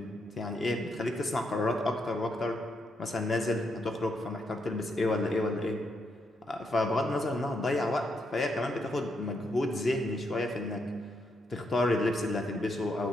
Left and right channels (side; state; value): both; normal; correlation 0.79